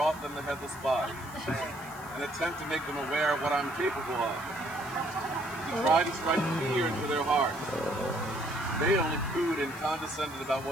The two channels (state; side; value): noise; right; hiss, 20 dB below the sound